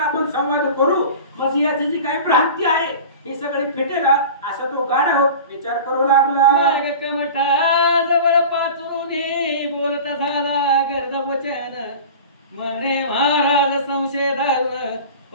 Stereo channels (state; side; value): inverted; both; correlation -0.36